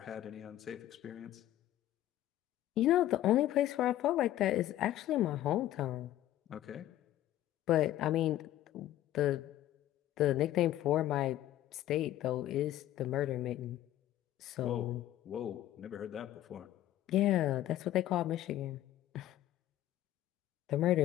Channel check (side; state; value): right; quieter; 13.5 dB